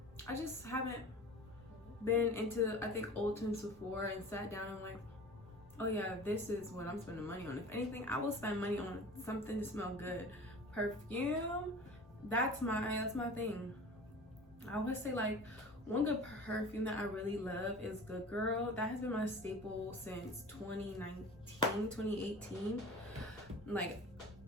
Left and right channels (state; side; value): normal; both; correlation 0.39